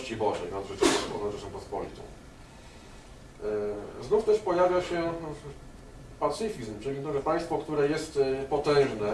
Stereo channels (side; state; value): both; identical; correlation 1.00